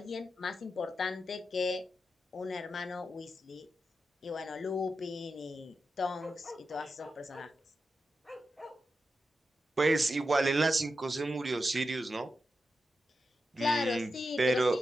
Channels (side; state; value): both; normal; correlation 0.89